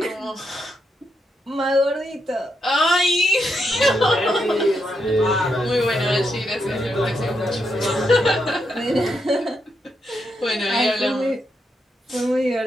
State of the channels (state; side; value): normal; both; correlation 0.82